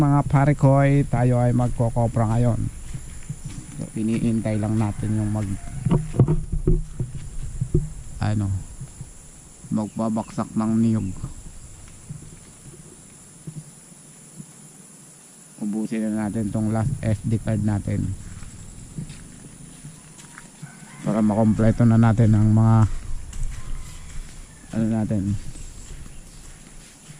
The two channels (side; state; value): both; identical; correlation 1.00